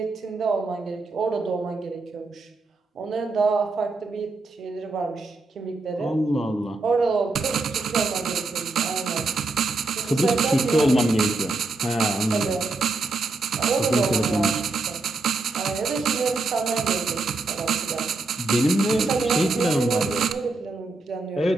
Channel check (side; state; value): left; quieter; 3.3 dB